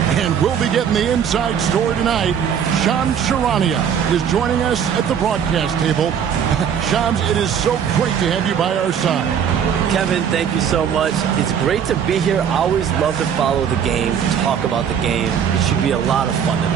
And we'll be getting the inside story tonight. Shams Charania is joining us at the broadcast table. Shams, it is so great to have you by our side. Kevin, thank you so much. It's great to be here. I always love to follow the game, talk about the game. It should be a lot of fun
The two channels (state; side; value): quieter; left; 8.1 dB